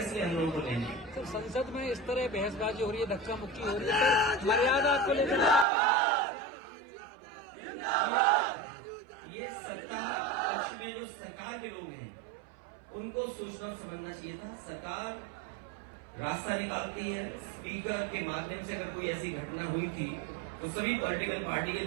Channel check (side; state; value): left; drops out; at 5.7 s